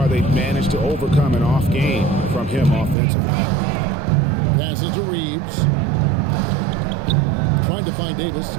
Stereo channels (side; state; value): left; drops out; at 3.0 s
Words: they've managed to overcome an off game from him offensively. Passes to Reeves. Trying to find Davis.